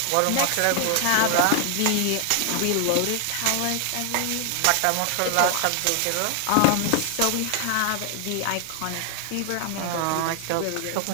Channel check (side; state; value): both; different; correlation 0.00